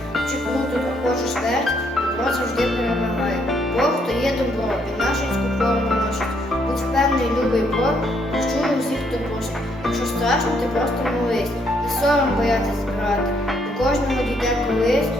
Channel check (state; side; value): normal; both; correlation 0.71